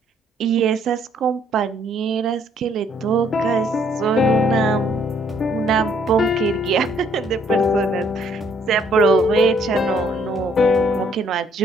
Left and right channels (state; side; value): normal; both; correlation 0.65